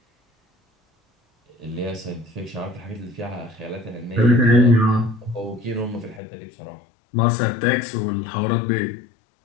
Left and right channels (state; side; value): drops out; right; at 6.2 s